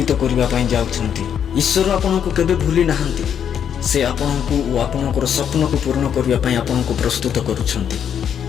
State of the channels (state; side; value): quieter; right; 8.5 dB